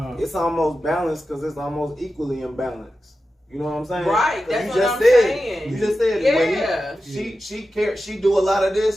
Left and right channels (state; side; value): normal; both; correlation 0.92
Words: It's almost balanced because it's almost equally imbalanced. You know what I'm saying? Right, that's what I'm saying. You just said yeah. She do a lot of